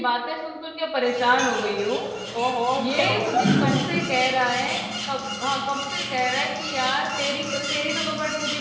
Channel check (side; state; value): both; identical; correlation 1.00